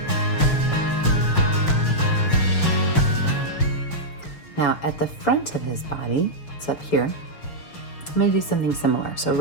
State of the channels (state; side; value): late; right; 6.5 ms